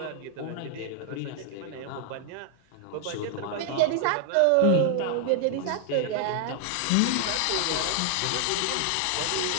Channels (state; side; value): different; both; correlation 0.00